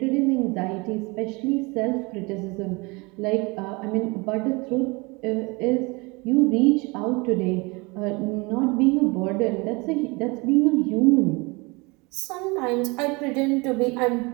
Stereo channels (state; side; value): quieter; left; 26.8 dB